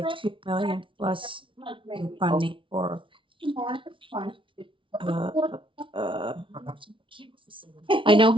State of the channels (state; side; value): late; left; 0.25 ms